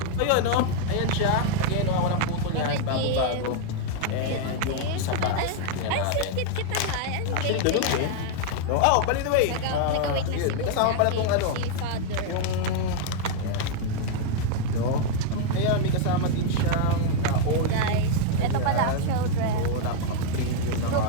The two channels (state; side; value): different; both; correlation 0.00